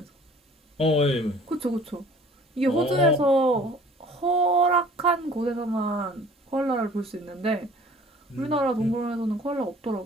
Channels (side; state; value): both; normal; correlation 0.50